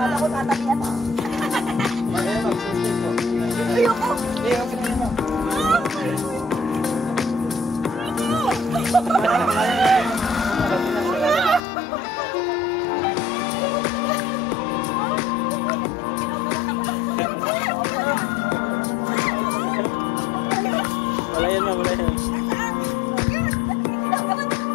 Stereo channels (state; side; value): drops out; right; at 11.6 s